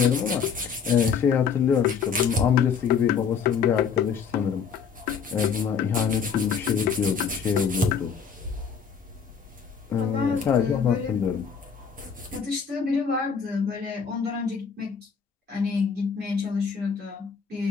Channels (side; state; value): right; quieter; 6.5 dB